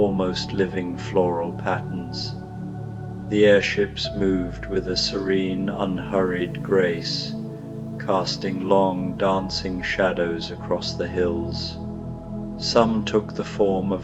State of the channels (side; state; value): both; identical; correlation 1.00